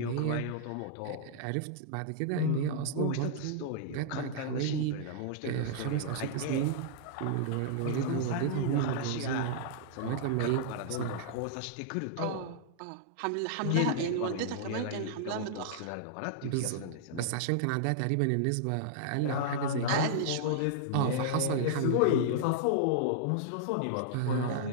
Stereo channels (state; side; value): different; both; correlation -0.01